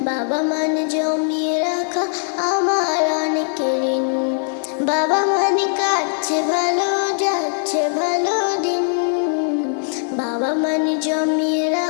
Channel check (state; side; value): silent; right; digital silence